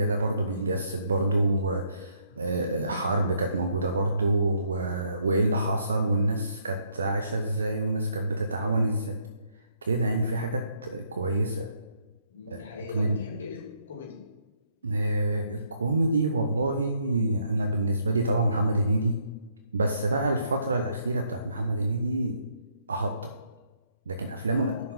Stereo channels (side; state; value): both; inverted; correlation -0.71